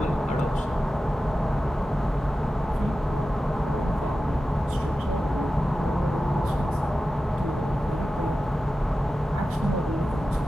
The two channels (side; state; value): both; normal; correlation 0.93